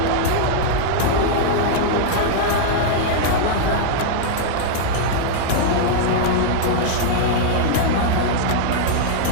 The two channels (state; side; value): different; both; correlation -0.01